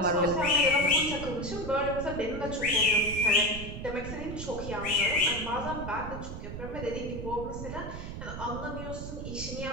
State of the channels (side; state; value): right; noise; rumble, 8 dB below the sound